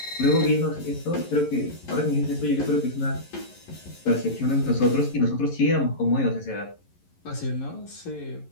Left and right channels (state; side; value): late; right; 11 ms